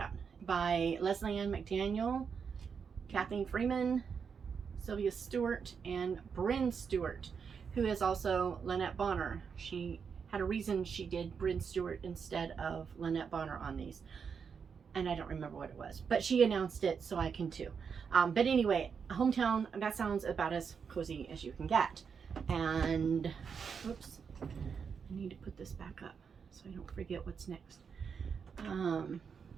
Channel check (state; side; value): quieter; left; 6.3 dB